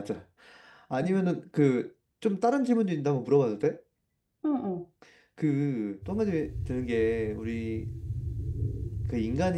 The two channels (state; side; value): identical; both; correlation 1.00